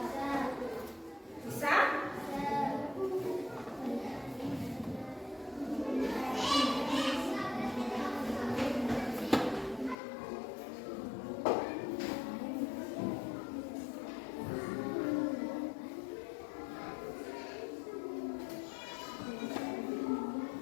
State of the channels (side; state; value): right; drops out; at 10.0 s